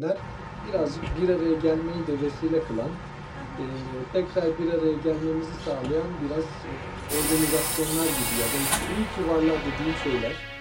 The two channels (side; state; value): both; identical; correlation 1.00